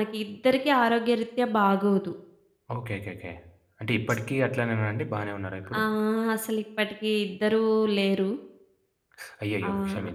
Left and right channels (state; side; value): identical; both; correlation 1.00